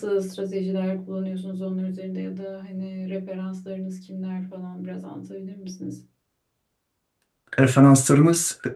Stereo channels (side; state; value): both; identical; correlation 1.00